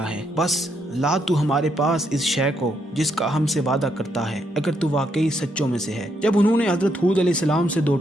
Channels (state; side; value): normal; both; correlation 0.76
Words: ہے، بس لا تو ہمارے پاس اس شے کو جس کا ہم سے وعدہ کرتا ہے اگر تو واقعی سچوں میں سے ہے۔ جب انہوں نے حضرت ہود علیہ السلام سے دو